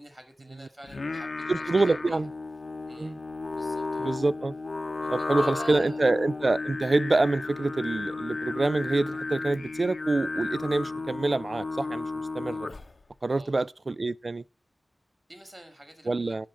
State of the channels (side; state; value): both; normal; correlation 0.97